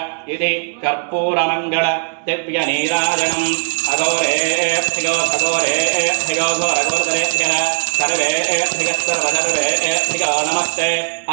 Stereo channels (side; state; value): left; silent; digital silence